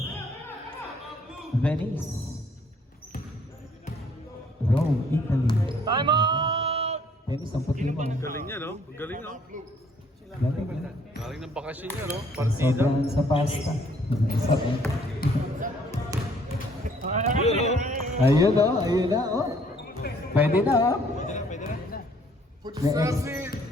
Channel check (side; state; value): both; normal; correlation 0.62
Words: Venice. Rome, Italy. Time out. Dennis, ang puti mo. Galing niya, no? Galing, no? Galing, galing. Galing ng bakasyon niya, no? Partida. Sobrang sa pasta. Yun, no? Ayun o, ayun na o. Pwede na o. Pwede